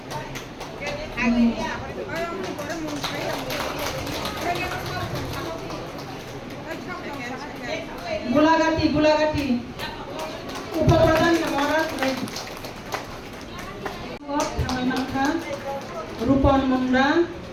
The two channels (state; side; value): identical; both; correlation 1.00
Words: গোলাগাতি গোলাগাতি উপপ্রধান মহারাজ রূপন মুন্ডা,